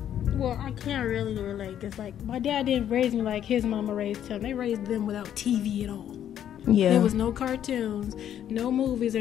Well, I can't really relate, because like my dad didn't raise me like his mama raised him. They raised them without TV at all. Yeah. There was no cartoons, no movies or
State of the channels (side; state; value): right; quieter; 10.3 dB